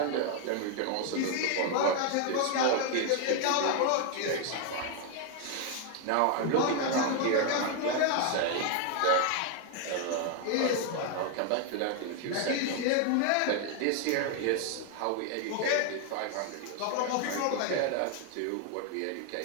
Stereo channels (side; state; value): both; different; correlation 0.01